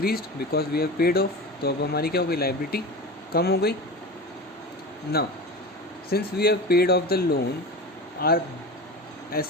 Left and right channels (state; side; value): normal; both; correlation 0.30